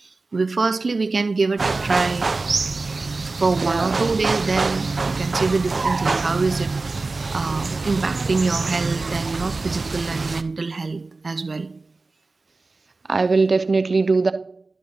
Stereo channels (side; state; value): left; quieter; 3.6 dB